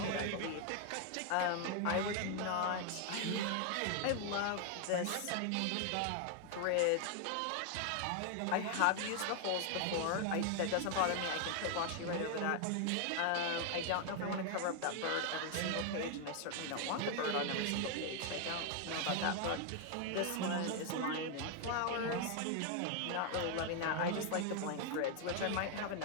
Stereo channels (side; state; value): both; different; correlation 0.00